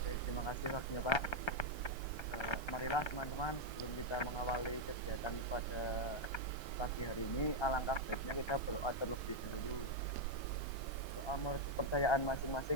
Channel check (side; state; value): right; late; 1.3 ms